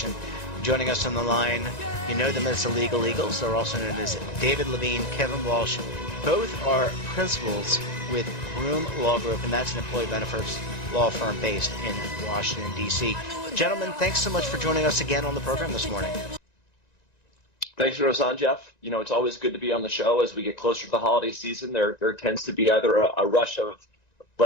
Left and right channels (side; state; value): right; late; 1.9 ms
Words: Joining us on the line, you know them as the Legal Eagles. They're also known as David Levine, Kevin Walsh. Both are principals with Groom Law Group, and that's an employee benefits law firm based in Washington, D.C. Gentlemen, thanks so much for joining us again on the program this morning. Thanks for us on, Jeff. You know, it's always good to be on the show as we get closer to the holiday season. There tends to be either a rush of